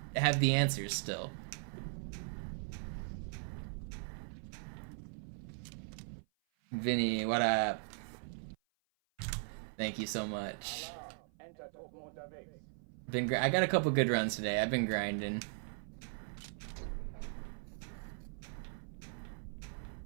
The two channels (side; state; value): left; silent; 52 dB below the other